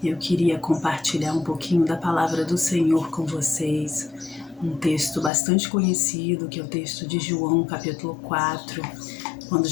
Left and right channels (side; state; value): right; drops out; at 5.3 s